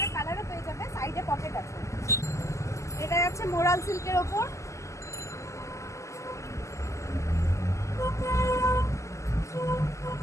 কালারও পেয়ে যাবে, সাইডে পকেট আছে। এটা যাচ্ছে মোরাল সিল্কের ওপর।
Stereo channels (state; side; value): late; right; 0.14 ms